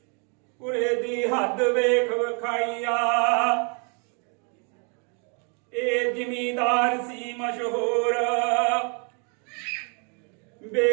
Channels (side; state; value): left; quieter; 37.8 dB